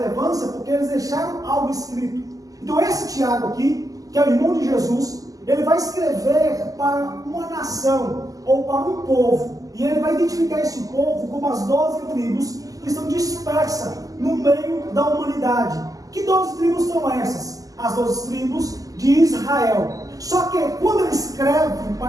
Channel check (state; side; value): late; left; 0.17 ms